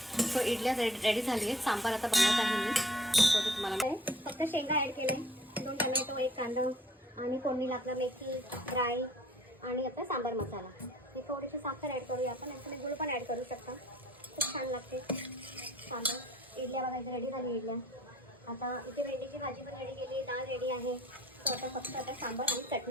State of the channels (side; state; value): both; normal; correlation 0.55